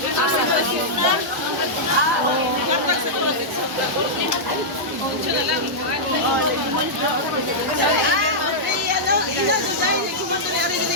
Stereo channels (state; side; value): normal; both; correlation -0.09